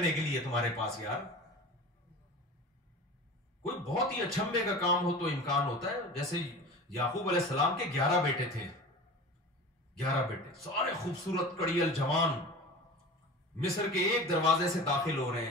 के लिए तुम्हारे पास यार। कोई बहुत ही अचंभे का काम हो तो इम्कान होता है। जैसे याकूब अलैहिस्सलाम के 11 बेटे थे, 11 बेटे, सारे खूबसूरत कड़ियल जवान, मिस्र के एक दरवाजे से दाखिल हो रहे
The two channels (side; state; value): both; normal; correlation 0.35